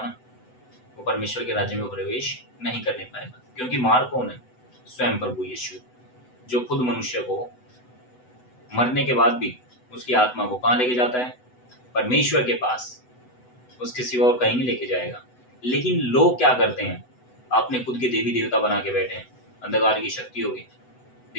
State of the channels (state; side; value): late; right; 8.0 ms